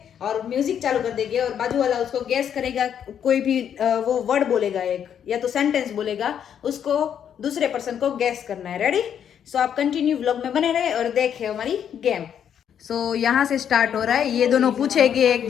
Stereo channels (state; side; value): quieter; right; 8.8 dB